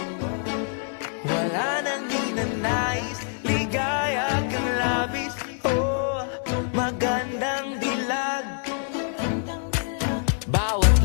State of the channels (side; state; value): right; silent; 60 dB below the other